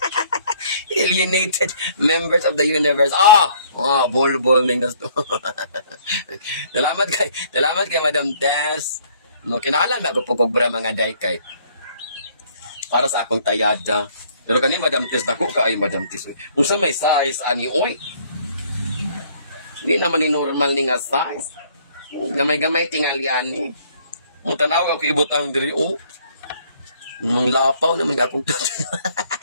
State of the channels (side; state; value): both; inverted; correlation -0.61